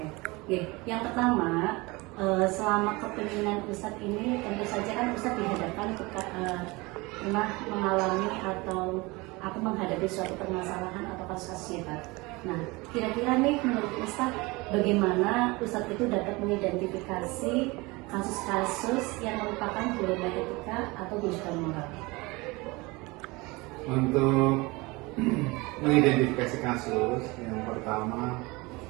Yang pertama, selama kepemimpinan Ustadz ini tentu saja kan Ustadz dihadapkan pernah mengalami atau menghadapi suatu permasalahan atau kasus hebat. Nah, kira-kira nih menurut Ustadz, bagaimana Ustadz itu dapat mengidentifikasi kasus-kasus yang merupakan dilema etika atau bujukan moral? Untuk mengidentifikasi kasus, yang pertama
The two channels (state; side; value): quieter; left; 24.0 dB